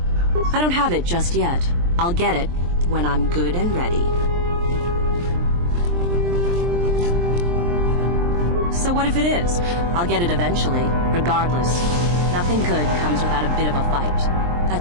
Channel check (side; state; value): left; late; 23 ms